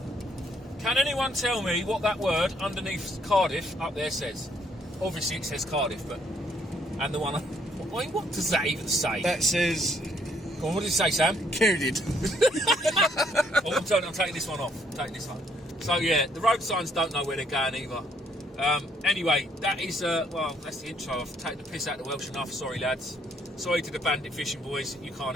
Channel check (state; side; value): normal; both; correlation 0.67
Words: can anyone tell me what that word underneath Cardiff up there says? Obviously it says Cardiff, but and the one. What does that even say? That says. Go on, what did it say, Sam? Coded. Oh, I'm taking this one off. I'm taking this one. So yeah, the road signs don't know where they're going either. Anyway, that is well, that's the intro. I've taken the piss out of the Welsh enough. Sorry, lads. Sorry to the bandit fishing boys. You